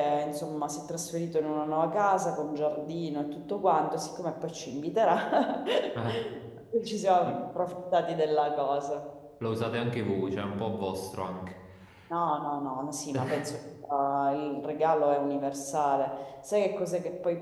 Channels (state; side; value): identical; both; correlation 1.00